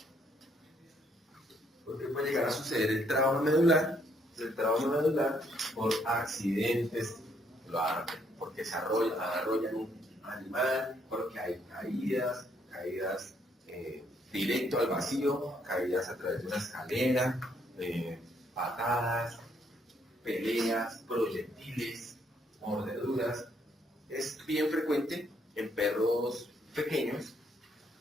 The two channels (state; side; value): normal; both; correlation 0.71